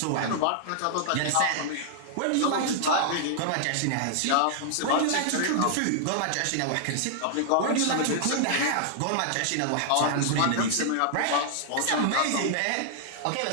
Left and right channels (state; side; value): different; both; correlation -0.01